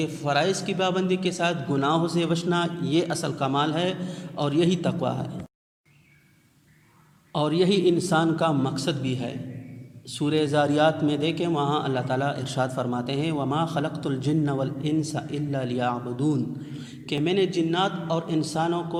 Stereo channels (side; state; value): both; identical; correlation 1.00